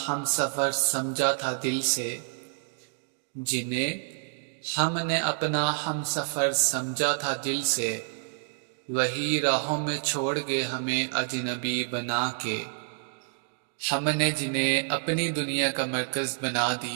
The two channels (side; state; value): left; silent; digital silence